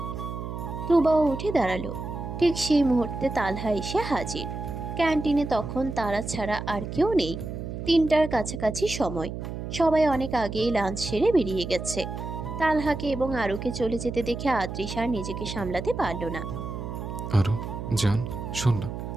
তুবাও উঠে দাঁড়ালো। ঠিক সেই মুহূর্তে তালহা এসে হাজির। ক্যান্টিনে তখন তারা ছাড়া আর কেউ নেই। 3টার কাছাকাছি সময়। সবাই অনেক আগেই লাঞ্চ সেরে বেরিয়ে গেছে। তালহাকে এবং আরুকে চলে যেতে দেখে আদ্রিস আর নিজেকে সামলাতে পারল না। আরও জান, শোন না,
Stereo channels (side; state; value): right; noise; hum, 7 dB below the sound